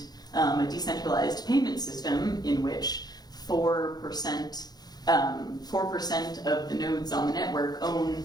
a decentralized payment system in which 4% of the nodes on the network own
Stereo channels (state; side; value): late; right; 0.19 ms